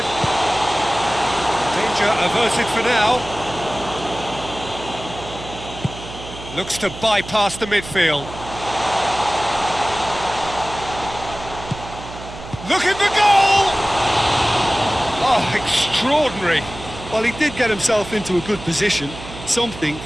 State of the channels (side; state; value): right; noise; hum, 13 dB below the sound